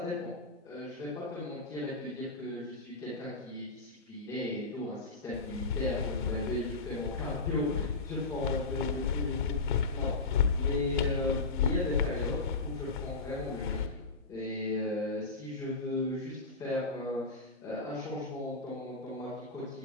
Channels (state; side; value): quieter; right; 3.6 dB